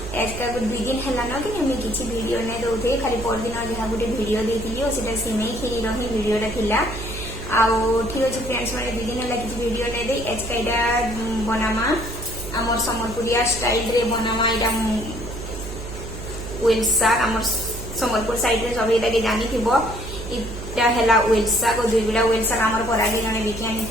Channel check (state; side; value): noise; right; hum, 9 dB below the sound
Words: आज का दुई दिन है ना कि मुझे किसी वीडियो नहीं दौथे खाली पर दिन जहाँ गोटे वीडियो देती और सीटा सिमई खीर ही वीडियोटा थिला ठीक अच्छे फ्रेंड्स मैंने दुई दिन है किसी वीडियो नहीं दे आज का यहाँ बनामा आमर सम्बलपुरिया स्टाइल रे बनामा यहाँ वेल साग आमर सम्बलपुर साइड रे सब ये जानी इटा है वेल साग और दुई बिड़ा वेल साग आमर परागे जने बिकी